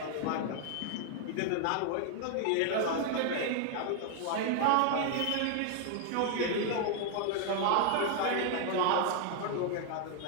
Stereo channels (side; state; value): both; different; correlation 0.00